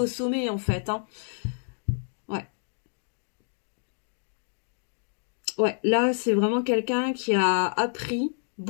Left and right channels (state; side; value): silent; right; digital silence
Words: sommet, en fait, hein. Ouais. Ouais, là, c'est vraiment quelqu'un qui a appris